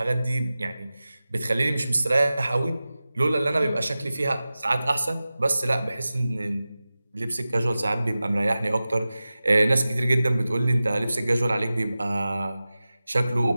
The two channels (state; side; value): inverted; both; correlation -0.95